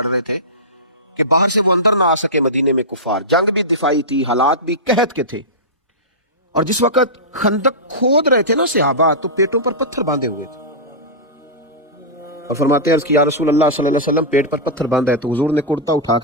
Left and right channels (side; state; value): both; normal; correlation -0.13